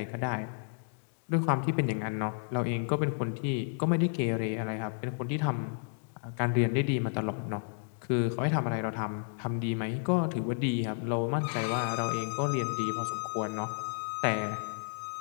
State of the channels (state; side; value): silent; right; digital silence